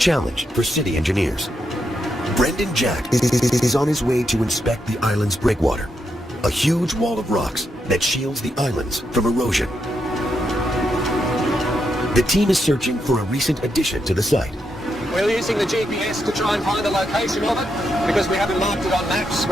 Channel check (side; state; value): both; normal; correlation 0.82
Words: for city engineers. Brendan Jack is on his way to inspect the island's breakwater, a huge wall of rocks that shields the islands from erosion. The team is searching for a recent addition to the site. We're using the GPS to try and find the location of it. Because we haven't marked it on maps,